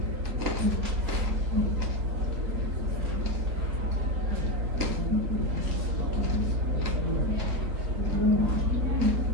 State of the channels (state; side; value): late; left; 3.6 ms